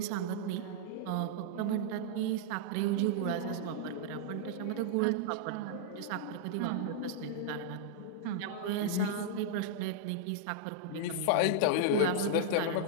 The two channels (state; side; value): different; both; correlation -0.01